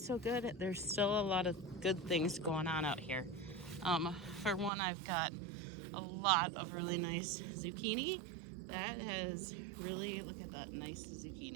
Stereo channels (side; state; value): left; drops out; at 4.7 s